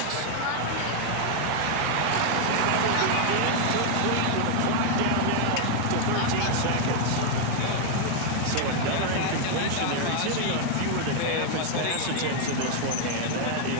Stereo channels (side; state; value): both; different; correlation 0.00